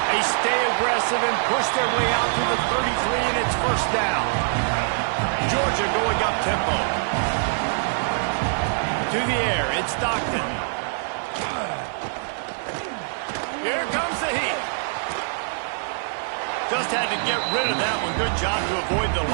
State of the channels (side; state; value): left; silent; digital silence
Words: They stay aggressive and push their way out to the 33, and it's first down. Georgia going up tempo. To the air, it's Stockton. Here comes the heat. Just had to get rid of that one. Good job to avoid the